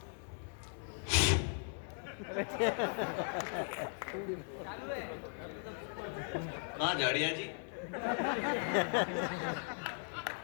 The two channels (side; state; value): right; silent; 52 dB below the other